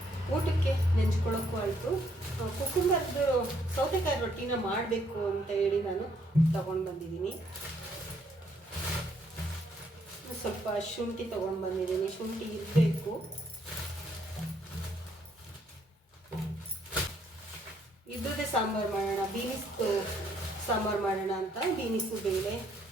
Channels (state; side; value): normal; both; correlation 0.69